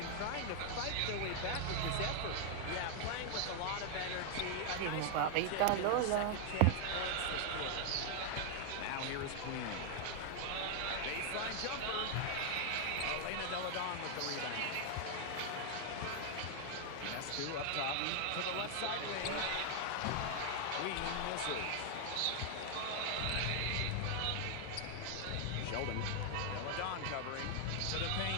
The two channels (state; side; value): different; both; correlation 0.00